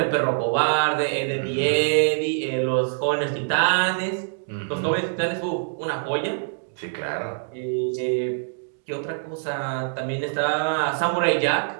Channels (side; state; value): left; silent; digital silence